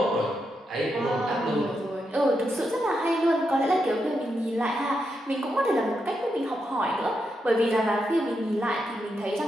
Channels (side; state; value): both; normal; correlation 0.84